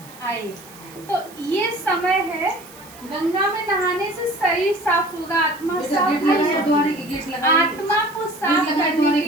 आए। तो ये समय है, गंगा में नहाने से शरीर साफ होगा, आत्मा साफ होगा। आत्मा को साफ करने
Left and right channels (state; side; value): noise; right; hiss, 21 dB below the sound